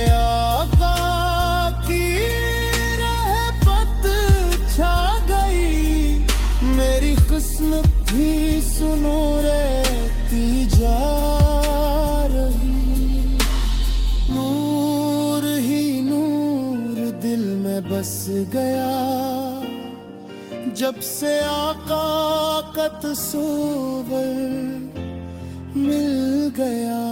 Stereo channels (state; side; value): identical; both; correlation 1.00